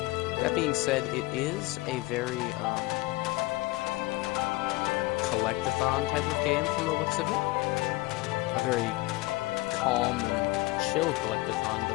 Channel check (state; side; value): quieter; right; 21.2 dB